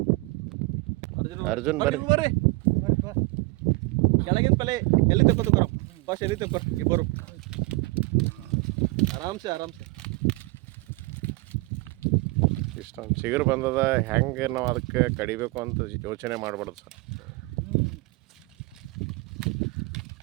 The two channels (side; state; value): left; quieter; 23.7 dB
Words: ಅರ್ಜುನ್ ಬರ್ರಿ. ಕೆಳಗಿನ ಪಲೆ ಎಲ್ಲಿ ತಕ್ಕೋತ ಬರೋ ಫಸ್ಟ್, ಎಲ್ಲಿ ತಕ್ಕೋರ್ ಇಬ್ಬರು ಆರಾಮ್ಸೆ. ಇಷ್ಟೊಂದು ಚಿಗುರು ಬಂದದ, ಹೆಂಗೆ ನಾವು ಅದಕ್ಕೆ ಕಡಿಬೇಕು ಅಂತ ಯೋಚನೆ ಮಾಡಬಾರ್ದು ಸರ್.